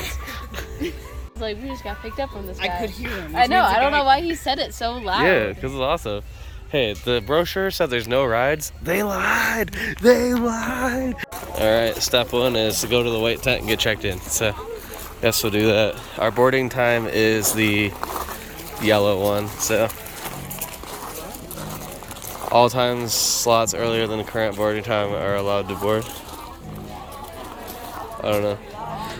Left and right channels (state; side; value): identical; both; correlation 1.00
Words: Like, we just got picked up from this guy. I could hear him. I know. I don't know why he said it so loud. Yeah, because it's awesome. Hey, the brochure said there's no rides. They lied. They lied. All right, step one is to go to the white tent and get checked in. So, guess we'll do that. Our boarding time is the yellow one. So, all times slots earlier than the current boarding time are allowed to board. I don't know.